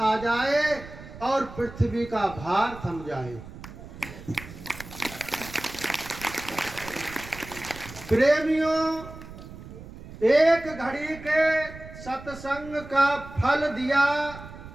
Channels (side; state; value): right; noise; rumble, 15 dB below the sound